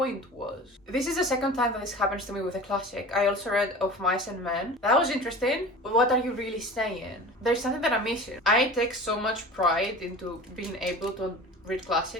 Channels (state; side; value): normal; both; correlation 0.37